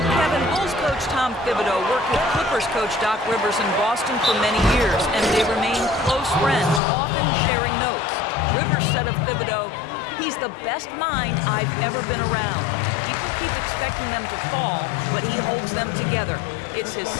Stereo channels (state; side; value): drops out; right; at 6.8 s